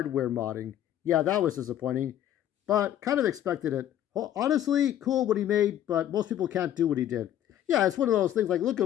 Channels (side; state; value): right; quieter; 11.4 dB